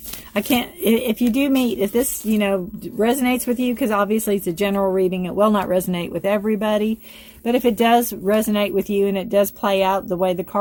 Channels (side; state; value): both; identical; correlation 1.00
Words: can't, if you do meet, if this, resonates with you, because obviously it's a general reading, it will not resonate with everybody. But if it does resonate with you and it does play out the way the